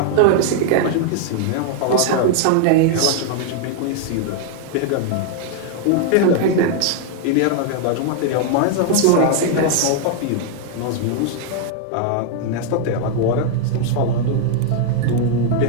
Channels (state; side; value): different; both; correlation 0.00